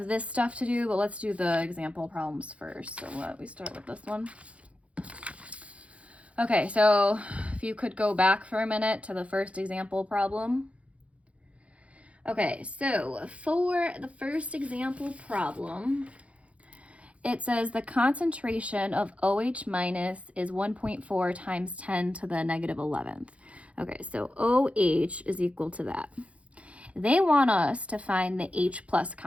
this stuff to do, but let's do the example problems first. So we start with this one. Okay, so if you could go back for a minute to the first example problem. Okay, so for the first example problem, it says the concentration of OH minus is 1.4 times 10 to the negative 11th. Okay, so OH is equal to that. They want us to find the H plus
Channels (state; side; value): late; left; 0.063 ms